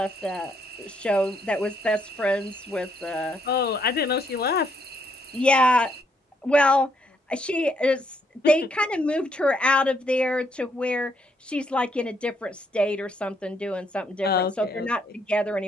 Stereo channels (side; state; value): both; normal; correlation 0.73